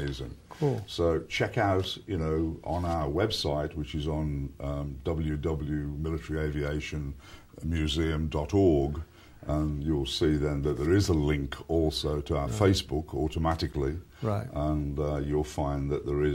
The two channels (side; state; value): both; identical; correlation 1.00